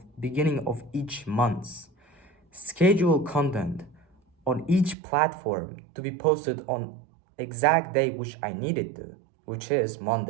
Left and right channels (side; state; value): left; drops out; at 5.0 s